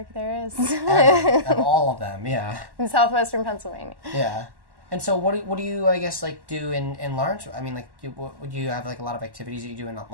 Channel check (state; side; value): late; left; 1.1 ms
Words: there is. Of all of them, yeah. In southwestern Pennsylvania. Yeah. And so what do you, I guess, do in Lawrenceville? I mean, would you have, a lot of activities that you do in